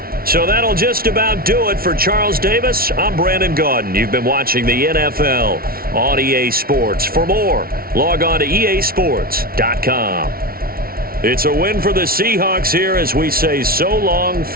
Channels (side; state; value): left; late; 0.43 ms